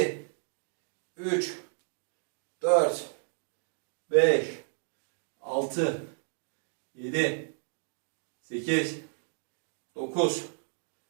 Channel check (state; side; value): silent; left; digital silence